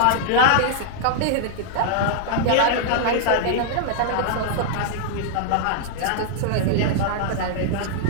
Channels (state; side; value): different; both; correlation -0.01